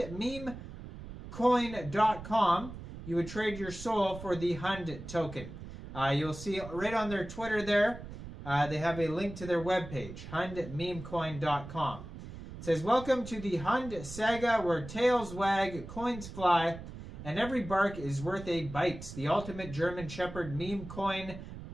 hundmemecoin.com, you would trade your Sol for the Hund token. You'll see right on their Twitter there, they have a link to their webpage, hundmemecoin.com. It says, welcome to the Hund saga, where tails wag, coins fly, and every bark is worth a bite. The ultimate German Shepherd meme coin,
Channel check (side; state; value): right; noise; rumble, 12 dB below the sound